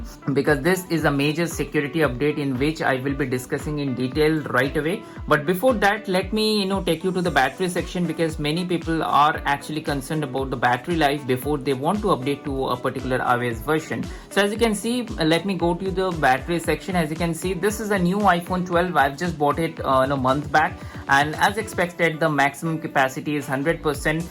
because this is a major security update in which I will be discussing in detail right away. But before that, let me take you to the battery section, because many people are actually concerned about the battery life before they want to update to a particular iOS version. So as you can see, let me go to the battery section. As you can see, this is a new iPhone 12. I've just bought it a month back, and as expected, the maximum capacity is 100%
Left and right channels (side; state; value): both; identical; correlation 1.00